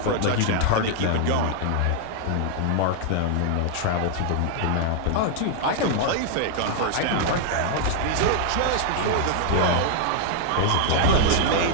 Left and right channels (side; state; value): both; different; correlation 0.00